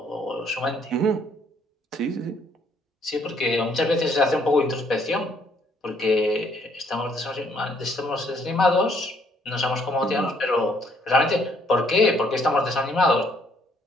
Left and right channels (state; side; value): normal; both; correlation 0.66